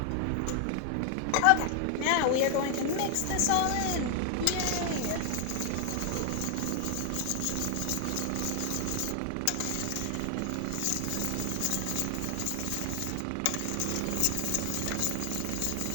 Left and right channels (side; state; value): both; different; correlation 0.00